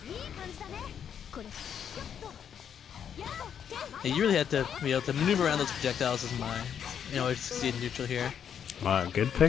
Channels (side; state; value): right; quieter; 8.4 dB